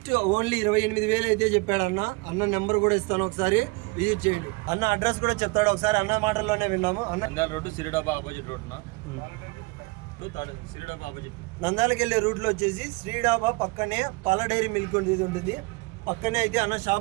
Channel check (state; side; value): quieter; left; 27.1 dB